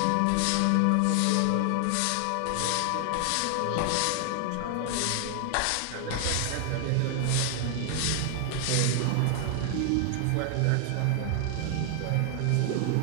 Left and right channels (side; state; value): both; different; correlation 0.00